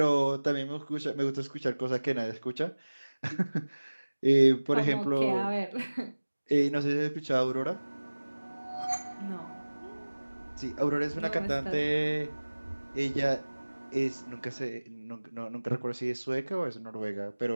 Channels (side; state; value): both; inverted; correlation -1.00